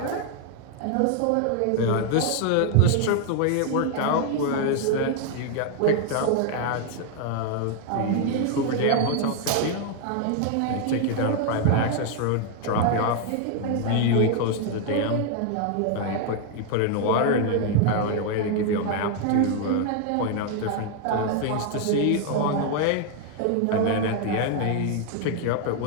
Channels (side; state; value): both; different; correlation 0.00